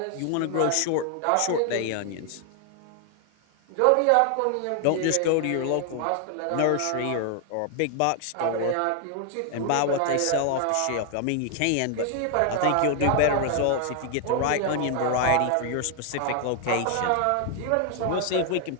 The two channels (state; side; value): different; both; correlation 0.00